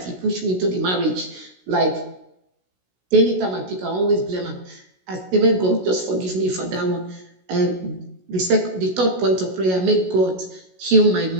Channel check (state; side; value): late; left; 16 ms